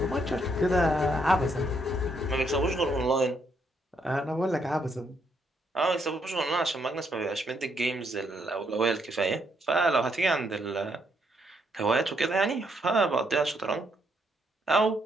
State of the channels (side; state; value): both; normal; correlation 0.74